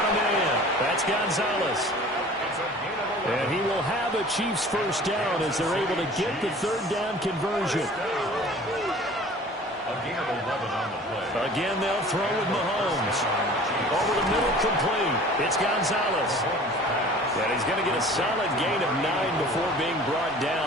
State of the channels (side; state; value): both; normal; correlation 0.45